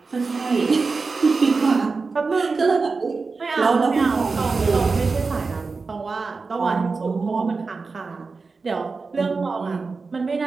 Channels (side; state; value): left; quieter; 4.3 dB